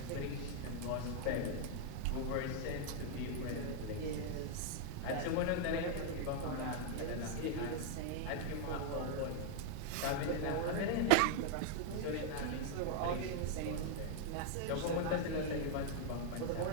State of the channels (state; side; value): different; both; correlation -0.01